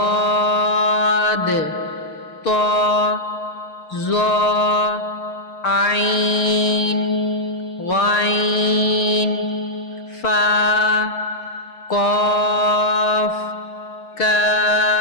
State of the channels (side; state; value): right; late; 6.6 ms